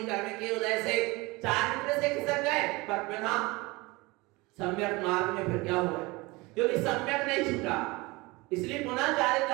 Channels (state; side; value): quieter; left; 23.5 dB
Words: कर्म के उदय से चारित्र से खिसक गए, पर बिना सम्यक मार्ग में फिर क्या हुआ, क्योंकि सम्यक नहीं छूटा, इसलिए पुनः चारित्र